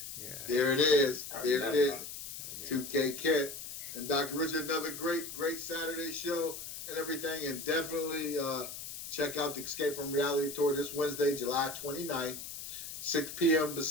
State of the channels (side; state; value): left; noise; hiss, 9 dB below the sound